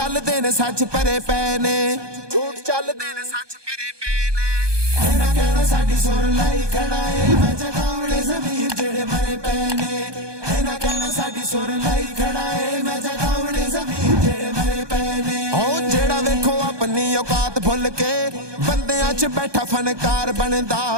ने सच भरे पै ने, झूठ चलदे ने सच भरे पै ने। इन्हां कहना साडी सुर लाई खड़ा है, मैं जगावणे ज़मीर जेड़े मरे पै ने। इन्हां कहना साडी सुर लाई खड़ा है, मैं जगावणे ज़मीर जेड़े मरे पै ने। ओ जेड़ा वेखो अपनी औकात भुल के बंदियां च बैठा फनकार बनदा,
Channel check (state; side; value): late; left; 1.2 ms